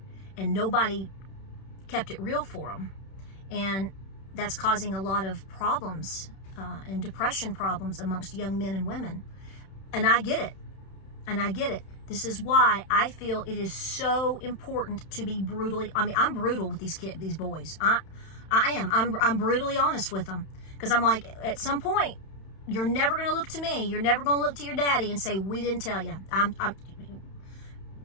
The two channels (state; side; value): late; right; 31 ms